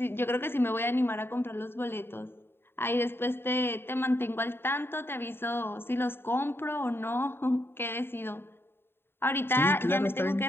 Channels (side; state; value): right; late; 0.11 ms